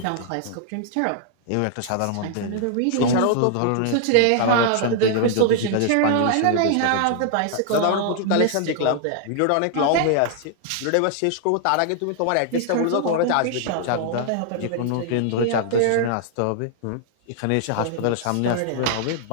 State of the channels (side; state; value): both; different; correlation -0.01